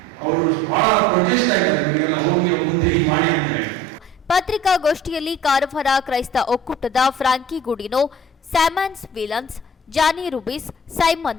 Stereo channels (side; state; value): both; normal; correlation 0.47